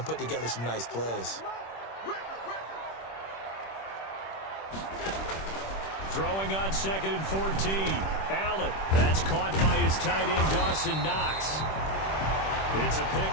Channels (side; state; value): right; late; 26 ms